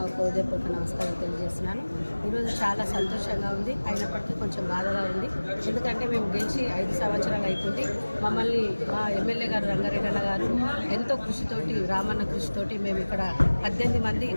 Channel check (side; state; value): both; inverted; correlation -1.00